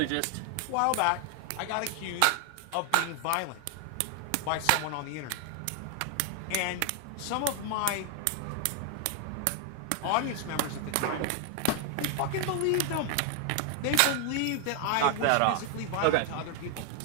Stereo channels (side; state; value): both; different; correlation 0.00